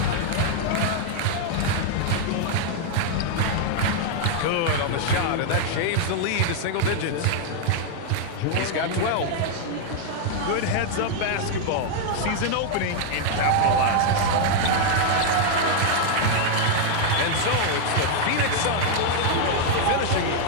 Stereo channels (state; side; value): different; both; correlation 0.00